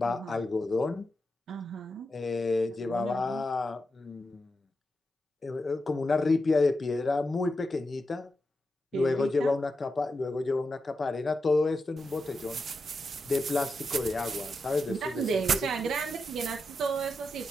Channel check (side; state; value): both; normal; correlation 0.88